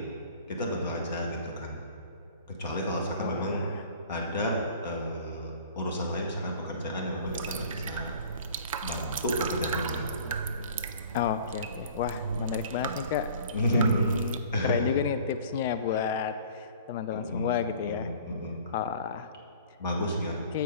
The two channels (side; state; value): both; inverted; correlation -0.48